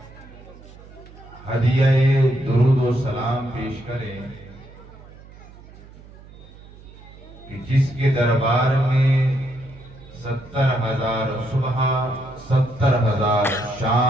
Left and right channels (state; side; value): noise; right; hum, 20 dB below the sound